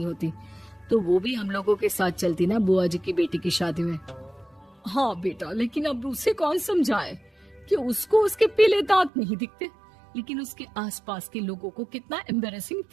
होती, तो वो भी हम लोगों के साथ चलती ना बुआ जी की बेटी की शादी में। हाँ बेटा, लेकिन अब उसे कौन समझाए कि उसको उसके पीले दांत नहीं दिखते, लेकिन उसके आसपास के लोगों को कितना एम्बैरेसिंग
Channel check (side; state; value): left; drops out; at 9.1 s